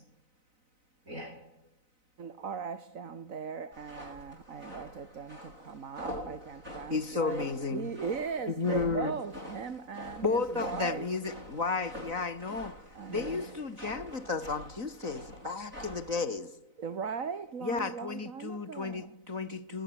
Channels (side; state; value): left; late; 4.0 ms